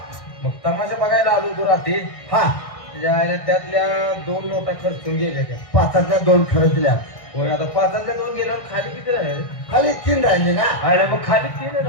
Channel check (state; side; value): late; right; 1.6 ms